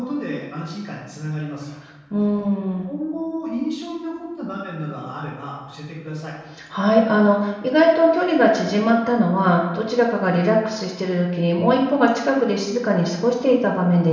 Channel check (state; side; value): identical; both; correlation 1.00